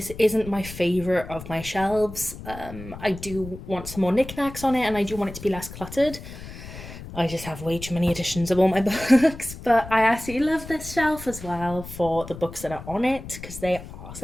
isn't my favourite of my shelves. I do want some more knickknacks on it, and I do want it to be less cluttered. I just have way too many editions of all my books, but I absolutely love this shelf as well for the books that are on it because they are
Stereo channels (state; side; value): noise; left; rumble, 13 dB below the sound